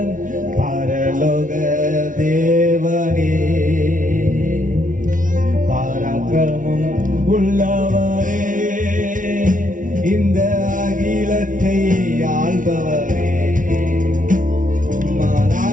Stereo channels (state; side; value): late; left; 0.38 ms